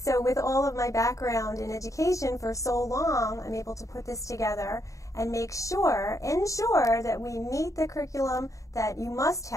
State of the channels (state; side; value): late; right; 0.16 ms